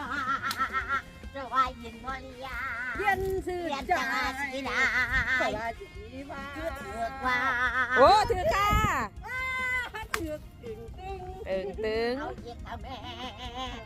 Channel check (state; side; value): identical; both; correlation 1.00